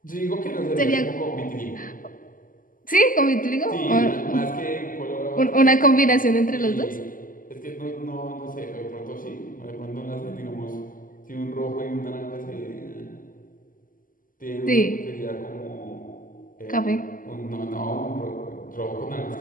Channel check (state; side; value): late; right; 0.40 ms